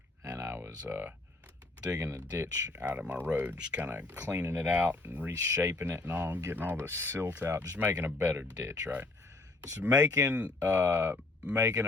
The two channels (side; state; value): right; quieter; 3.1 dB